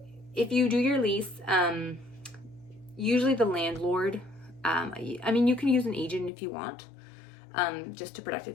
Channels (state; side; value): drops out; right; at 6.3 s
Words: If you do your lease, usually the landlord, I mean, you can use an agent if you want, just to protect it